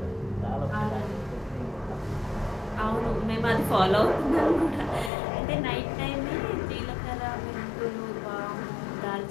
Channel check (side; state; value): right; drops out; at 5.1 s